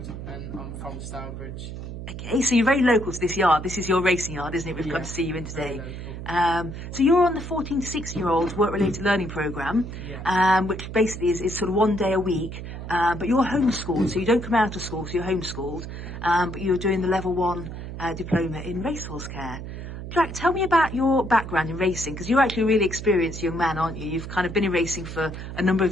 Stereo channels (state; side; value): noise; right; hum, 9 dB below the sound